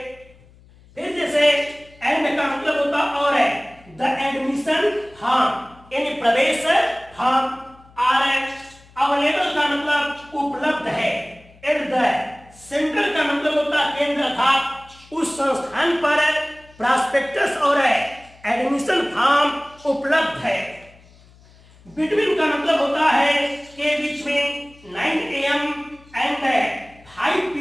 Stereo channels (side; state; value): left; noise; hum, 26 dB below the sound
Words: फिर जैसे एंड का मतलब होता और है, द एडमिशन फॉर्म यानी प्रवेश फॉर्म। आर है, अवेलेबल का मतलब उपलब्ध है। एट द सेंटर का मतलब होता केंद्र था, उस संस्थान पर प्रॉस्पेक्टस और एडमिशन फॉर्म उपलब्ध है। बिटवीन का मतलब होता है के बीच में 9 AM एंड 5